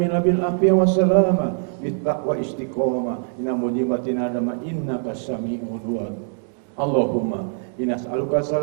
bil afiyah wa salama bit taqwa istiqomah inna mujibatina adama innaka sami'ud du'a. Allahumma inna as'aluka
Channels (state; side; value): silent; left; digital silence